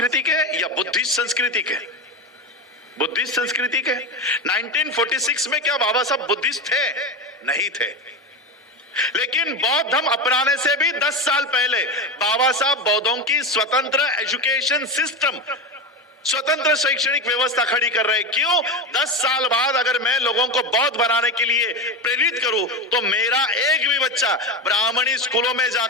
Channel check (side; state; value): both; normal; correlation 0.20